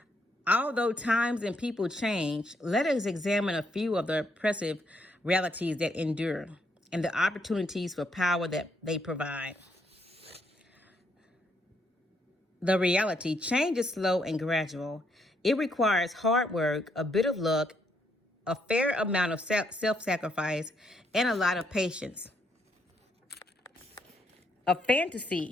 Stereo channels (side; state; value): both; normal; correlation 0.74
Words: Although times and people change, let us examine a few of the oppressive realities that endure and the opportunities for power that they provide. The reality: change is slow and gradual. It requires hard work, a bit of luck, a fair amount of self-sacrifice, and a lot of patience. A